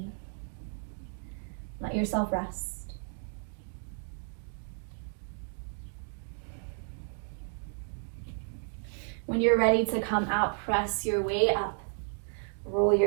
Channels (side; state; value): left; silent; 56 dB below the other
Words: Let yourself rest. When you're ready to come out, press your way up. Roll